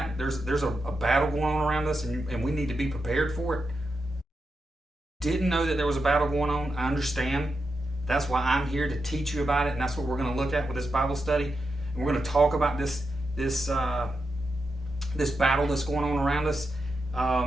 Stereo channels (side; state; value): both; normal; correlation 0.87